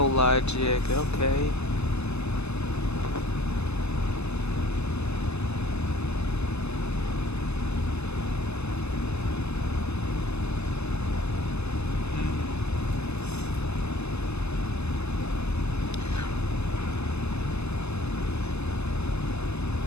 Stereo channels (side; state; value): right; late; 0.81 ms